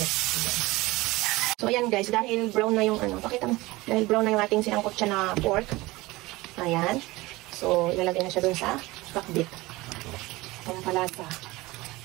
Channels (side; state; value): left; quieter; 20.6 dB